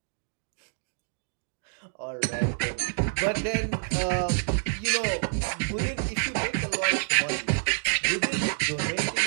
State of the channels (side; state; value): left; silent; digital silence